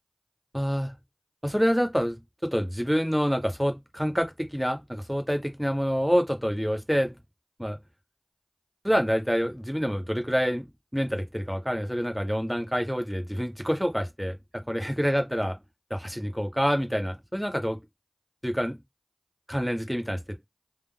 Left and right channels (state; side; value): identical; both; correlation 1.00